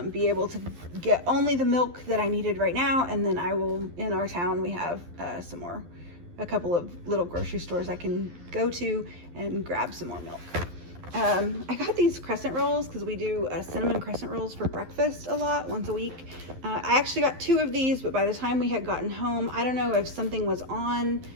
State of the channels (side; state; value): left; late; 12 ms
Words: be able to get only the milk that I needed right now. And then I will, in our town, we have a couple of little grocery stores I can go to and grab some more milk. I got these crescent rolls because we do cinnamon crescent rolls for breakfast a lot, once a week. I actually got 2 of these, but by the time we had gotten home, I don't know if something was on